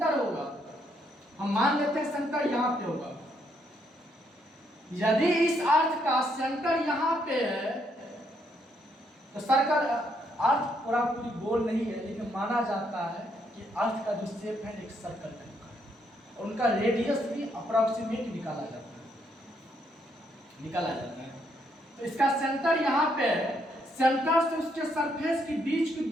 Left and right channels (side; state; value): both; normal; correlation 0.74